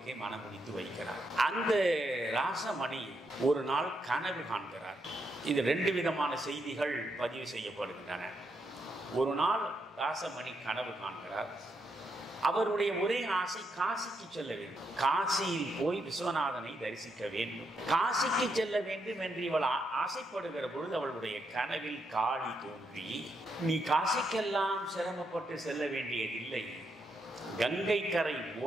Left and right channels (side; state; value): both; normal; correlation 0.80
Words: மனமுடித்து வைக்கிறார். அந்த ராசமணி ஒரு நாள் கனவு காண்கிறார். இது 2 விதமான செய்திகள் பதிவு செய்யப்படுகின்றன. ஒரு நாள் ராசமணி கனவு காண்கிறார். அவருடைய ஒரே ஆசை காசிக்கு செல்ல வேண்டும். காசியில் போய் விஸ்வநாதனை தரிசிக்க வேண்டும். காசிக்கு செல்ல வேண்டும் என்று இவள் ஆசைப்படுகிற பொழுது அவளுடைய கனவில் காளி தோன்றி, நீ காசிக்கெல்லாம் சிரமப்பட்டு செல்ல வேண்டியதில்லை, கங்கை கரை